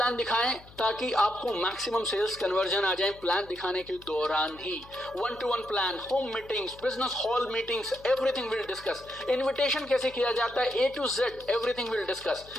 दिखाएं ताकि आपको मैक्सिमम सेल्स कन्वर्जन आ जाए प्लान दिखाने के दौरान ही। 1-to-1 plan, home meetings, business hall meetings, everything will discuss. Invitation कैसे किया जाता है, A to Z, everything will discuss.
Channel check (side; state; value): left; noise; hum, 22 dB below the sound